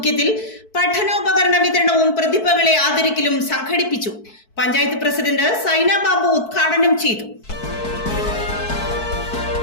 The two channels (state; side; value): late; right; 4.6 ms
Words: പഠനോപകരണ വിതരണവും പ്രതിഭകളെ ആദരിക്കലും സംഘടിപ്പിച്ചു. പഞ്ചായത്ത് പ്രസിഡന്റ് സൈന ബാബു ഉദ്ഘാടനം ചെയ്തു.